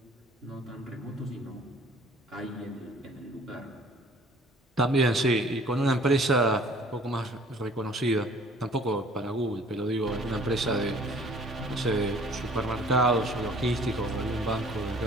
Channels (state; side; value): normal; both; correlation 0.53